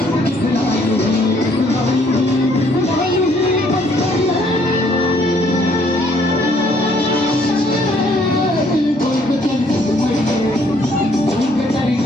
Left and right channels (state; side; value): normal; both; correlation 0.65